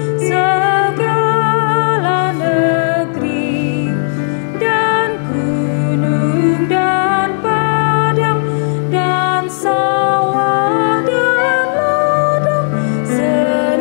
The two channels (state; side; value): silent; right; digital silence